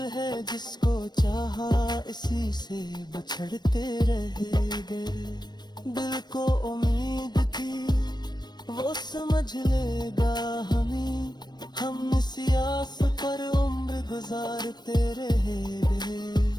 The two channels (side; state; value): right; late; 0.21 ms